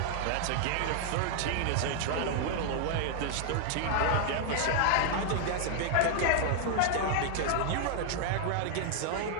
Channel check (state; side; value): different; both; correlation 0.00